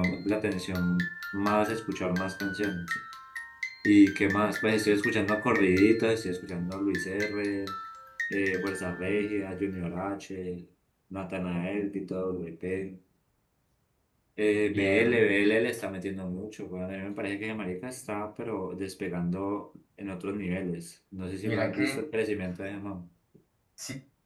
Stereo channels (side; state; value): both; identical; correlation 1.00